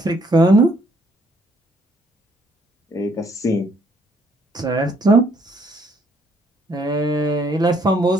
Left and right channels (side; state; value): both; normal; correlation 0.67